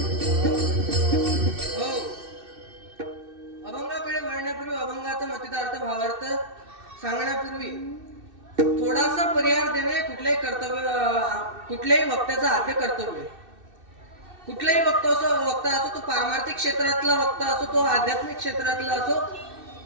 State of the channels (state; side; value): late; left; 2.6 ms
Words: सांगण्यापूर्वी थोडासा परिहार देणे कुठल्याही वक्त्याचं आद्य कर्तव्य. कुठलाही वक्ता असो तो पारमार्थिक क्षेत्रातला वक्ता असो तो आध्यात्मिक क्षेत्रातला असो